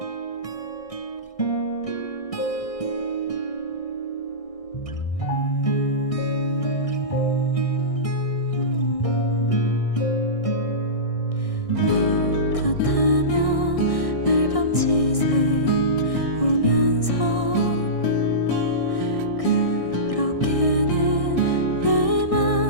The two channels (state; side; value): late; right; 1.6 ms